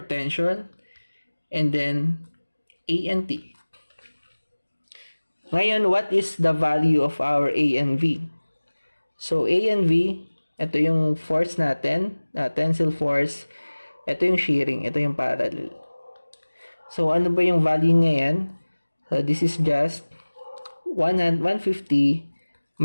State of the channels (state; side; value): inverted; both; correlation -1.00